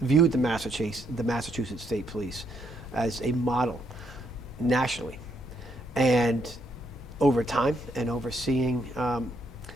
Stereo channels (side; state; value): both; normal; correlation 0.74